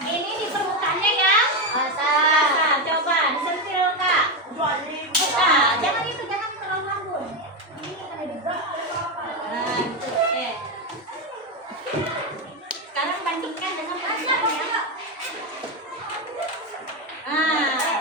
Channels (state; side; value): normal; both; correlation 0.11